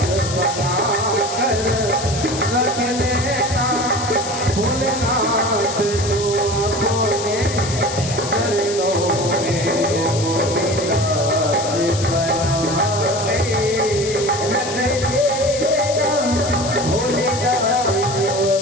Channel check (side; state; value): left; noise; hiss, 8 dB below the sound